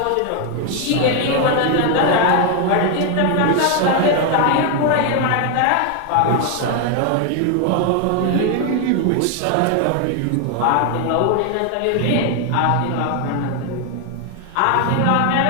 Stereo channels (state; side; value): different; both; correlation 0.01